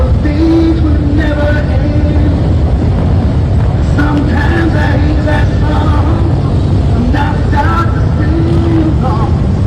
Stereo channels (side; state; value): both; identical; correlation 1.00